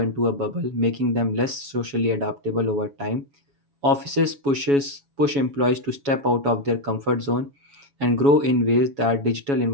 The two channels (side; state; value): left; late; 7.2 ms